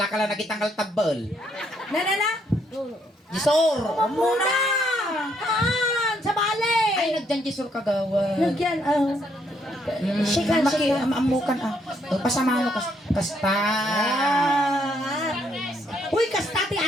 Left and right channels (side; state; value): both; normal; correlation 0.71